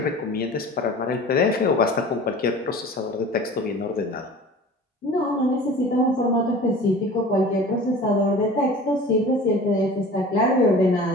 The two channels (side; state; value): both; normal; correlation 0.41